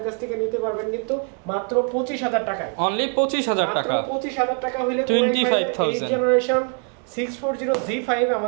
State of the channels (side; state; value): left; quieter; 39.5 dB